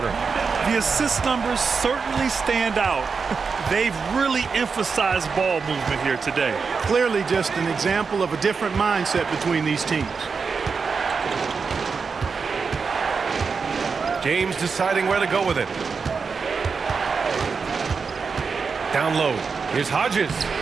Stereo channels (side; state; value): left; quieter; 5.2 dB